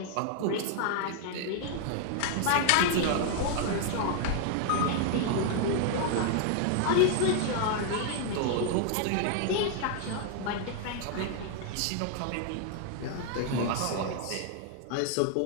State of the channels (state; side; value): different; both; correlation 0.00